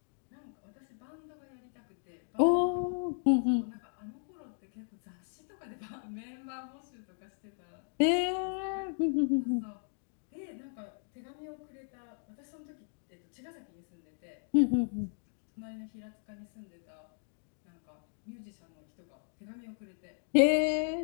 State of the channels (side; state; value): right; silent; digital silence